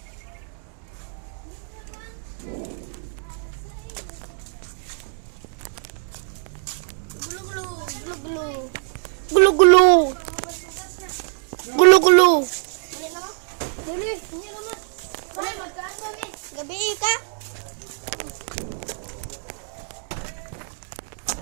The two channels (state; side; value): silent; left; 63 dB below the other